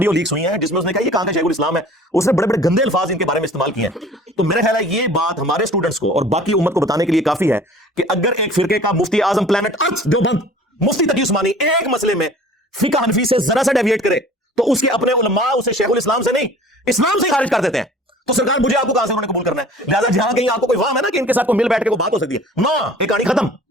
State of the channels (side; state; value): both; normal; correlation 0.47